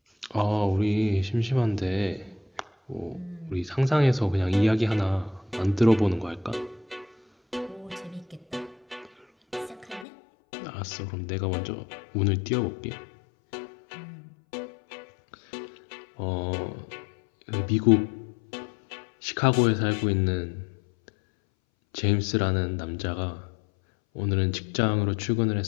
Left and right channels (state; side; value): drops out; right; at 10.1 s